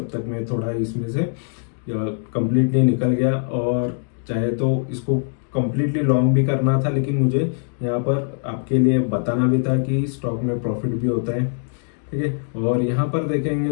तक मैं थोड़ा इसमें से कंप्लीटली निकल गया, और चाहे तो इसको कंप्लीटली लॉन्ग भी करना था, लेकिन मुझे यहाँ पर आपके लिए बताना भी था कि स्टॉक में प्रॉफिट भी होता है। ठीक है, और यहाँ पर देखेंगे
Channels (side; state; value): right; silent; digital silence